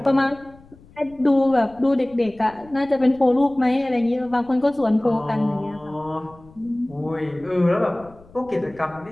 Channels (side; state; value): left; noise; rumble, 25 dB below the sound